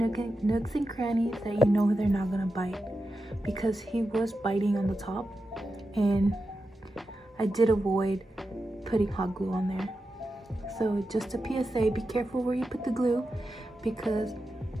nooks and crannies that you know they're not gonna bite, because he was biting on the top and I did avoid putting hot glue on there. So just a PSA, be careful where you put the glue because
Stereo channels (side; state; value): both; normal; correlation 0.90